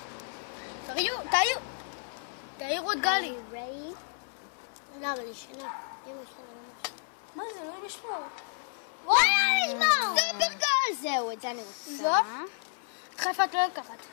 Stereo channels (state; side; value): silent; right; 57 dB below the other